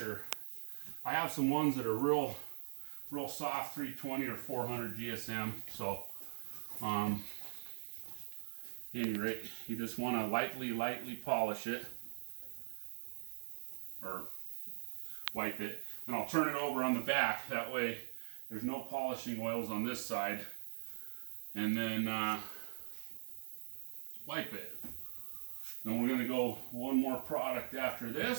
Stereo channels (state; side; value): silent; left; digital silence